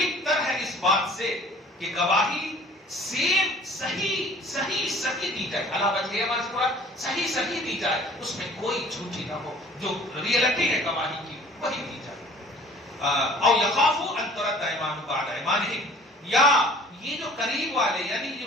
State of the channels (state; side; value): normal; both; correlation 0.50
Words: تر ہے اس بات سے کہ گواہی سیم صحیح دی جائے، علی وجہہا ہمارے پورا صحیح دی جائے، اس میں کوئی جھوٹی نہ ہو، جو ریئلٹی ہے گواہی کی وہی دی جائے۔ او یخافوا ان ترد ایمان بعد ایمانہم، یا یہ جو قریب والے یعنی یہ